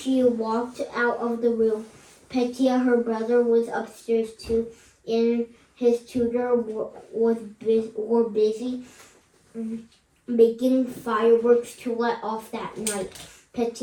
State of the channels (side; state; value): both; identical; correlation 1.00